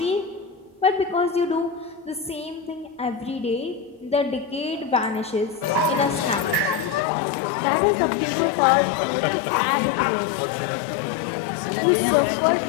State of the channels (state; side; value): drops out; right; at 7.1 s